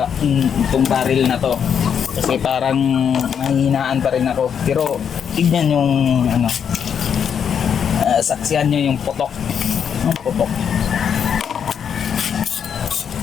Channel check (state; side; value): quieter; right; 7.7 dB